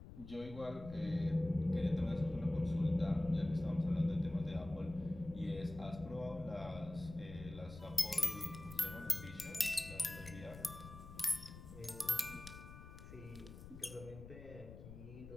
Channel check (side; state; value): left; noise; rumble, 14 dB below the sound